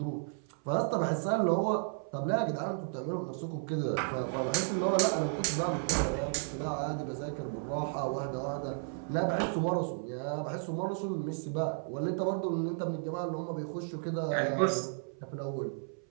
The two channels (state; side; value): silent; left; 56 dB below the other